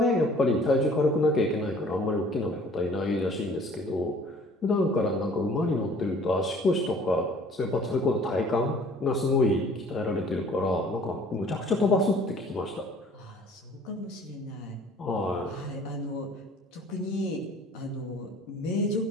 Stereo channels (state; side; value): normal; both; correlation 0.53